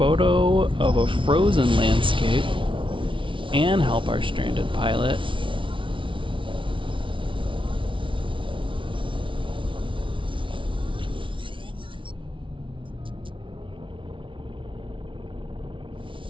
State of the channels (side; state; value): left; late; 0.25 ms